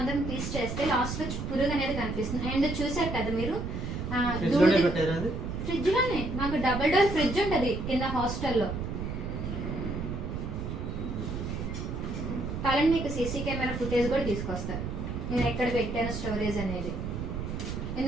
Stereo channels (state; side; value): noise; right; rumble, 4 dB below the sound